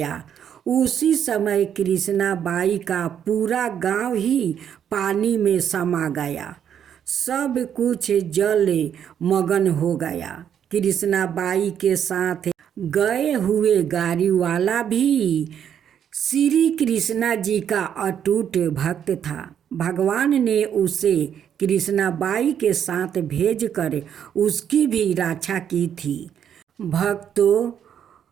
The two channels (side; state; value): left; quieter; 8.9 dB